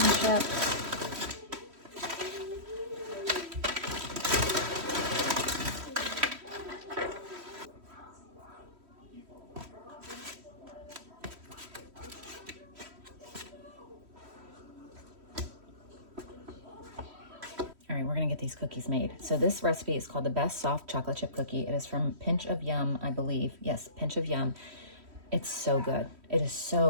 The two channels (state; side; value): late; left; 3.1 ms